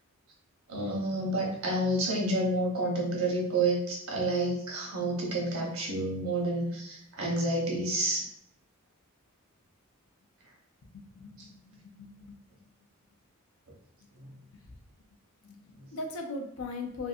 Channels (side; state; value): both; normal; correlation 0.22